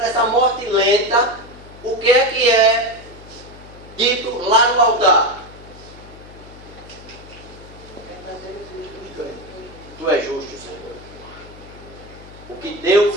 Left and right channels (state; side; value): noise; left; hum, 19 dB below the sound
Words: morte lenta, o que é dito lá no altar? Tu és justo, Senhor. O que Deus